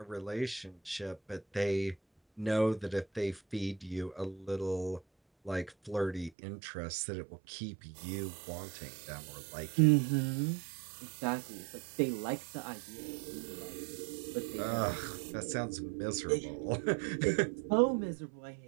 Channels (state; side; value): drops out; left; at 6.3 s